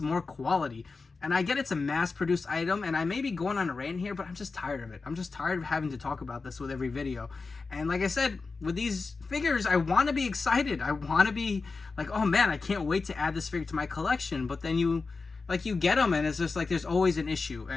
quality. And I get it's a mass-produced item, and I may be going on a rant here, but I'm just tired of it. I'm just tired of having to talk about this with every video. And like I said, with these figures, I want to be excited. I want to be like, oh man, I can't wait to add this figure to my collection. But then you like you get them and it's just like there's always an issue.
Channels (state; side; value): quieter; right; 4.2 dB